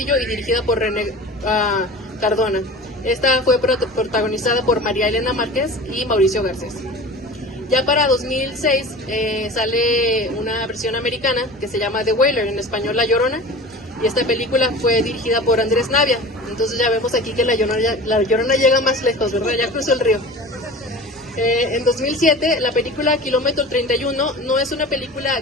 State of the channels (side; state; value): both; normal; correlation 0.37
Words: y dirigida por René Cardona. Esta fue protagonizada por María Elena Márquez y Mauricio Garcés. Ya para 2006 sale una versión americana que se llama The Wailer, en español La Llorona, y esta película fue dirigida por Andrés Navia. Entonces ya vemos aquí que La Llorona llega más lejos, ¿verdad? Ya cruzó el río. En 2007, la película Kilómetro 31 no es una película